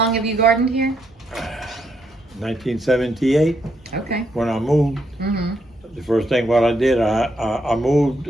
have you gardened here? 1978 Okay. when I moved. Mm-hmm. The first thing what I did, I moved.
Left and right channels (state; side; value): normal; both; correlation 0.76